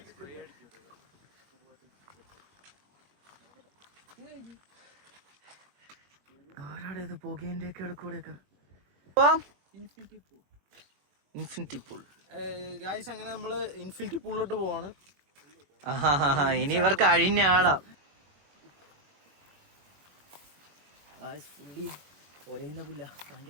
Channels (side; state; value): left; late; 21 ms